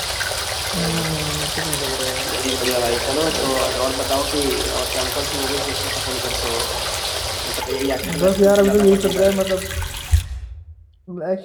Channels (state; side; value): identical; both; correlation 1.00